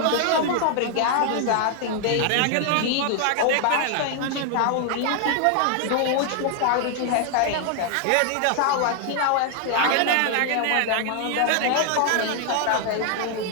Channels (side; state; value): both; different; correlation 0.00